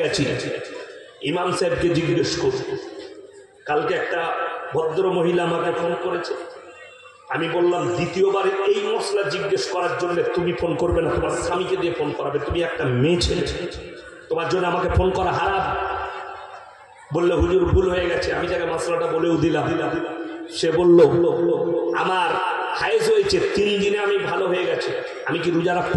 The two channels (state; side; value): identical; both; correlation 1.00